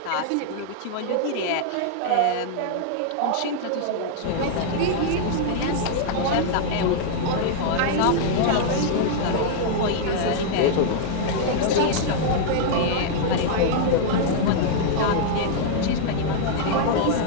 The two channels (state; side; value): different; both; correlation -0.01